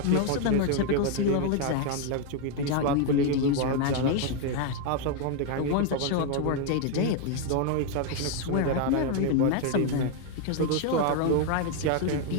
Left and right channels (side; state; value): both; different; correlation 0.01